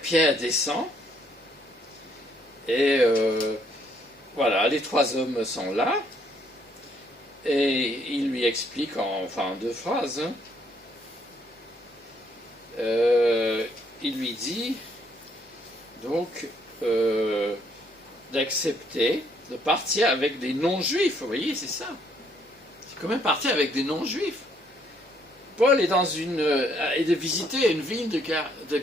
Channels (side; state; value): both; normal; correlation 0.68